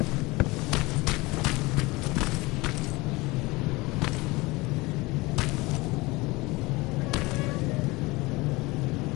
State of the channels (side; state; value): right; quieter; 22.7 dB